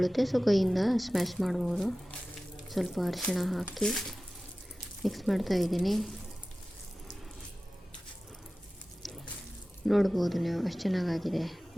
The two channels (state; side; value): normal; both; correlation 0.96